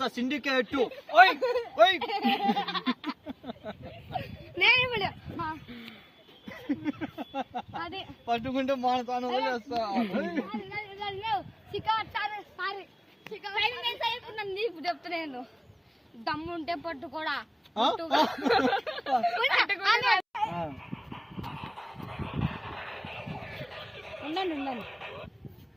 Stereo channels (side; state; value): both; identical; correlation 1.00